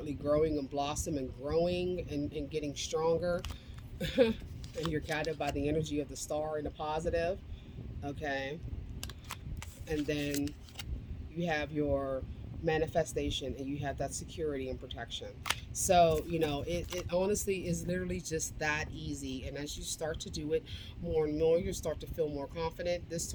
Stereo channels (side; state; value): both; identical; correlation 1.00